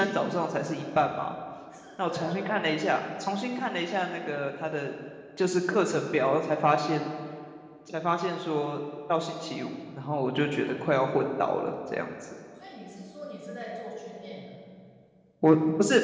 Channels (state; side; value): identical; both; correlation 1.00